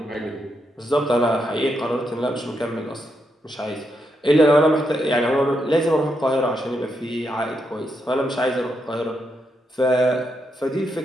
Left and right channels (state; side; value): normal; both; correlation 0.81